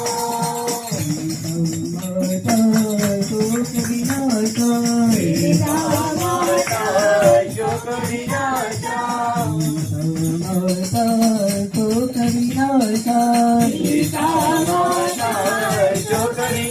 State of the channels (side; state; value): both; identical; correlation 1.00